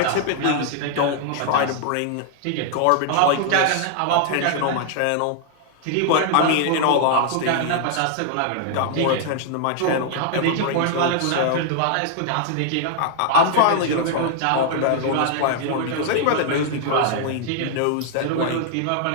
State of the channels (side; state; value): both; different; correlation 0.00